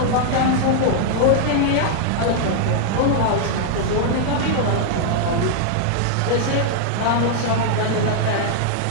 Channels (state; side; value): different; both; correlation 0.00